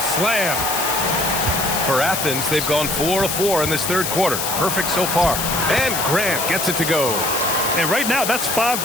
slam. For Athens, they've gone 4 of 4 in this third quarter. Perfect so far. And Grant gets it to go. And right now, that's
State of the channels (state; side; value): noise; left; hiss, 2 dB below the sound